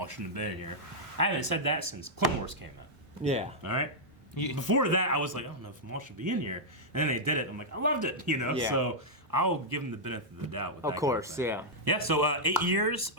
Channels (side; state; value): both; normal; correlation -0.07